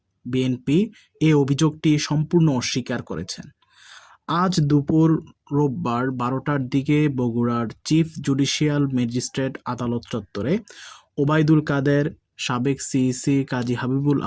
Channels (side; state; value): both; identical; correlation 1.00